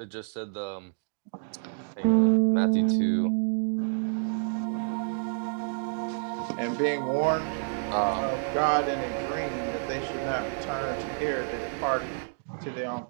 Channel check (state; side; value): silent; left; digital silence